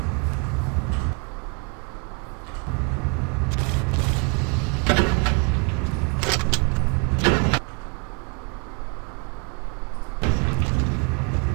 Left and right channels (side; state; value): left; quieter; 34.7 dB